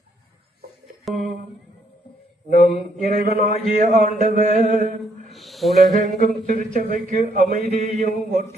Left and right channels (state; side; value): normal; both; correlation 0.71